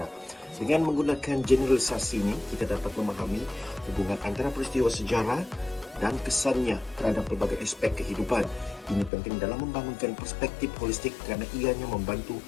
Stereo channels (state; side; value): drops out; right; at 9.1 s